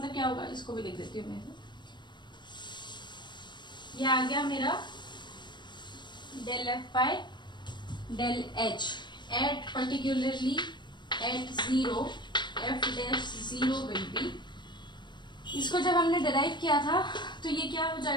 क्या होगा, इसको भी लिख देती हूँ मैं. ये आ गया मेरा del F by del h at particularly at 0 f dash 0 will be. इसको जब हमने डिराइव किया था तो ये क्या हो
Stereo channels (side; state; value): right; late; 0.22 ms